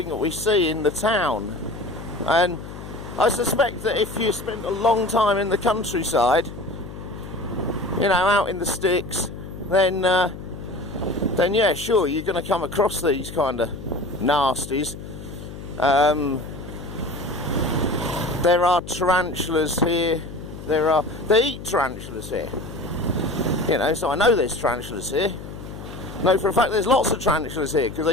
that we see in the town. And I suspect that if you spent a long time in the countryside, you know, out in the sticks, then yeah, sure, you're going to come across these kind of nasties. There are tarantulas here. They eat tarantulas here. You know, so I know there's tarantulas here. No, for a fact, there's lots of tarantulas here because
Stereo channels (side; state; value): left; noise; hum, 12 dB below the sound